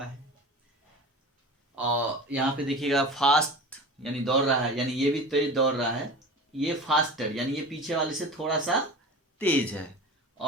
है। और यहाँ पे देखिएगा फास्ट यानी दौड़ रहा है, यानी ये भी तेज दौड़ रहा है, ये फास्टर यानी ये पीछे वाले से थोड़ा सा तेज है,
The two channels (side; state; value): both; normal; correlation 0.33